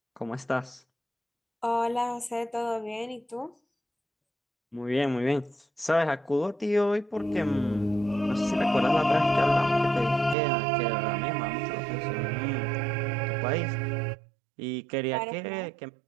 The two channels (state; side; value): drops out; left; at 10.4 s